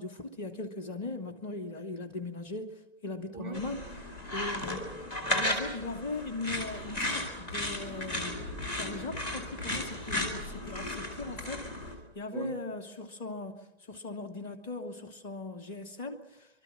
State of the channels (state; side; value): late; right; 2.1 ms